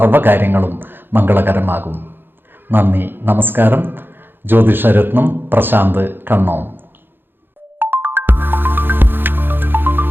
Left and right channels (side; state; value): left; late; 0.10 ms